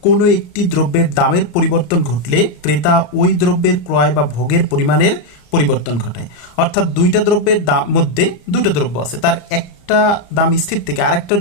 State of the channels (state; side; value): late; right; 34 ms